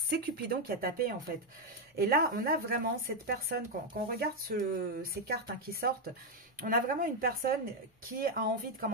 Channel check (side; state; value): both; normal; correlation 0.02